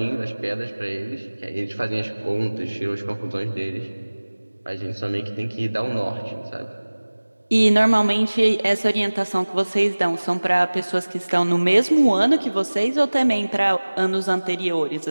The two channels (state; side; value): inverted; both; correlation -1.00